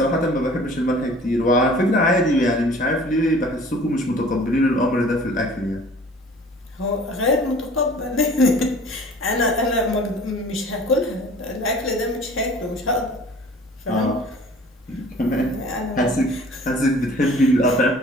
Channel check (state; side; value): normal; both; correlation 0.48